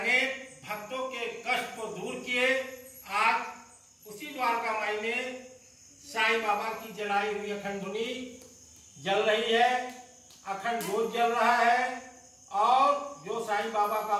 भक्तों के कष्ट को दूर किए। आज उसी द्वारका माई में साईं बाबा की जलाई हुई अखंड धुनी जल रही है, अखंड जोत जल रहा है, और जो साईं बाबा का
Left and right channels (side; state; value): both; identical; correlation 1.00